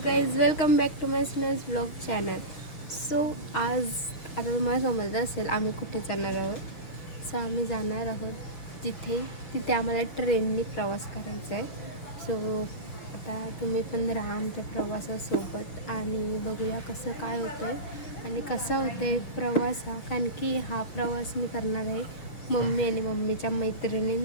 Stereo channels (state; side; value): late; right; 6.5 ms